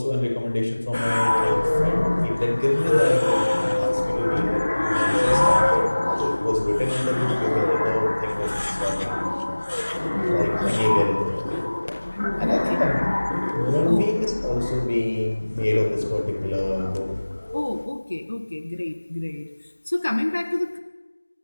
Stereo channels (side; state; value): both; inverted; correlation -1.00